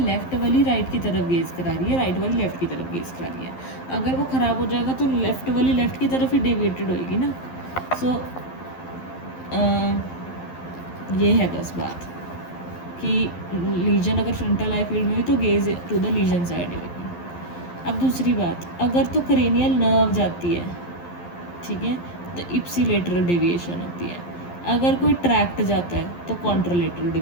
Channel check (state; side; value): late; right; 11 ms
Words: लेफ्ट वाली राइट की तरफ गेज करा रही है, राइट वाली लेफ्ट की तरफ गेज करा रही है। अगर वो ख़राब हो जाएगा तो लेफ्ट वाली लेफ्ट की तरफ ही डेविएटेड होएगी ना। सो ये है बस बात कि लीजन अगर फ्रंटल आई फील्ड में हुई तो gaze to the lesion side होगी। अब दूसरी बात, अगर तो क्रेनियल नर्व जाती है, ठीक है, तो इप्सिलेटरल डेविएशन होती है। अगर कोई ट्रैक्ट जाता है तो कॉन्ट्रालेटरल